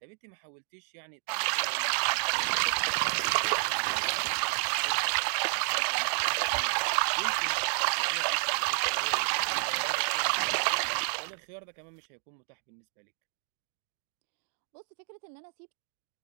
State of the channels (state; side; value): silent; left; digital silence